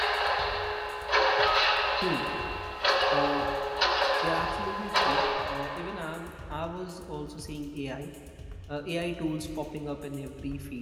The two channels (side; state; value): both; identical; correlation 1.00